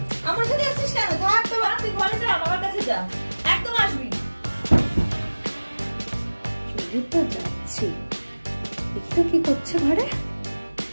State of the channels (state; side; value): inverted; both; correlation -1.00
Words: আমার সাথে আসছিস কেন? থাক তোর বাবা, তুই ঘরে যা, বাবার কাছে যা, একদম আসবি। চলে তো যাচ্ছি, দেখি তো কি করছে ঘরে।